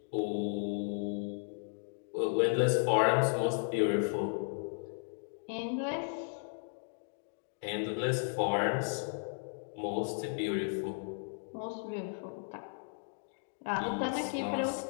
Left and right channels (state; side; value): silent; right; digital silence